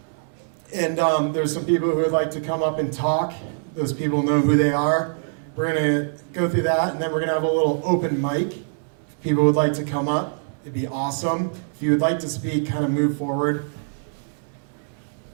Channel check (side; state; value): left; silent; 62 dB below the other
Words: and there's some people who would like to come up and talk. Those people know who they are. We're gonna go through that, and then we're gonna have a little open mic. If people would like to come up, it'd be awesome. If you would like to speak, kind of move forward.